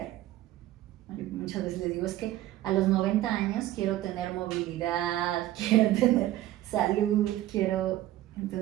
Yo muchas veces les digo, es que a los 90 años quiero tener movilidad, quiero tener salud,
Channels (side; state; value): left; quieter; 14.7 dB